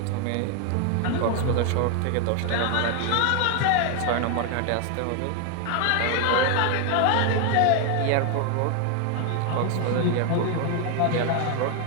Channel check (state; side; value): different; both; correlation 0.01